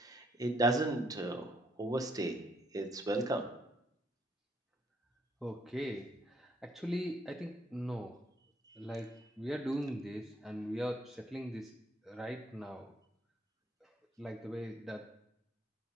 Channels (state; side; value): normal; both; correlation 0.69